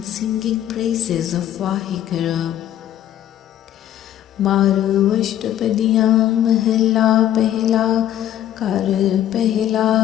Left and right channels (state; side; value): quieter; right; 11.7 dB